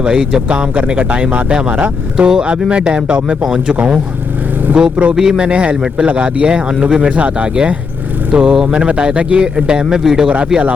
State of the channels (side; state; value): right; quieter; 5.1 dB